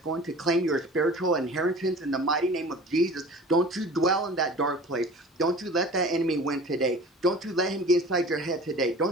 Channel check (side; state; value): both; normal; correlation 0.42